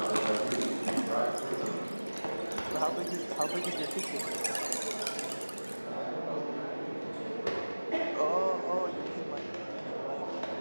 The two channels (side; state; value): both; inverted; correlation -1.00